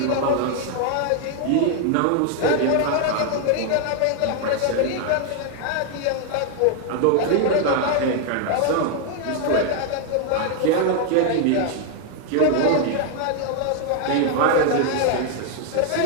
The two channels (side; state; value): both; different; correlation 0.00